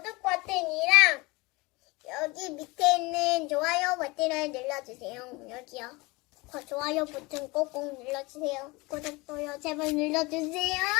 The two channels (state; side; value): quieter; right; 24.4 dB